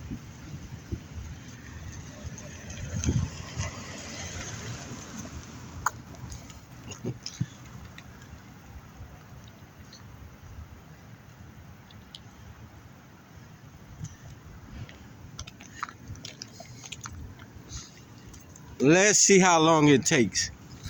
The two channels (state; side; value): identical; both; correlation 1.00